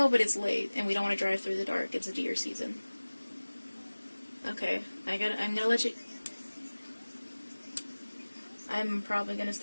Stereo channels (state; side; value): inverted; both; correlation -1.00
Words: but it's late, and we don't want to drive through the dark. It's a deer season. Okay, I'm gonna let you... I'm probably gonna